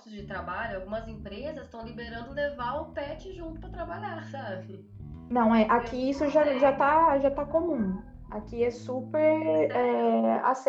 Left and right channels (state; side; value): identical; both; correlation 1.00